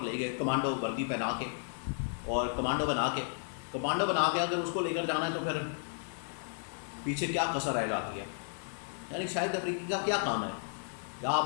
لے گئے کمانڈو وردی پہنا کے، اور کمانڈو بنا کے اگر اس کو لے کر جانا ہے تو پھر پیچھے کیا کسر رہ جاتی ہے، یعنی شاہد افریدی کا کیا کام ہے، یا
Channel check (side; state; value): right; silent; digital silence